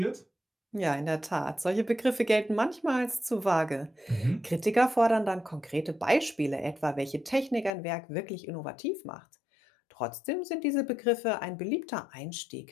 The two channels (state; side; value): drops out; right; at 7.7 s